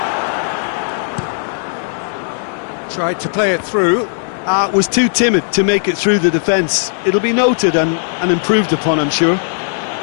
Tried to play it through. Was too timid to make it through the defence. It'll be noted and improved upon, I'm sure.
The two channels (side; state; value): right; silent; digital silence